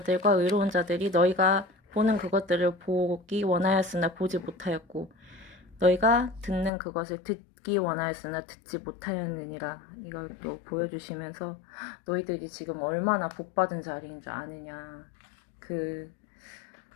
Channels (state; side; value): drops out; right; at 6.7 s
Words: 의로운 자들이 너희가 보는 그것들을 보기 원하였으나 보지 못하였고 너희가 듣는 그것을 듣기 원하였으나 듣지 못하였느니라. 이걸 또 보여주시면서 너희들이 지금 얼마나 복받은 자리인 줄 아느냐. 그